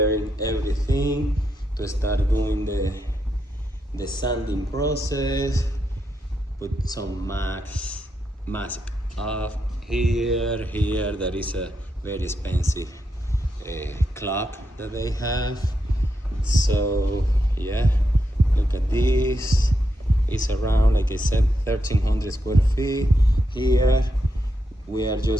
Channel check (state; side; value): normal; both; correlation 0.83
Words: everything to start doing the sanding process. Put some mask off here. There is a very expensive clock that they have. So yeah, look at this. It's around, like I said, 1,300 square feet. Here we are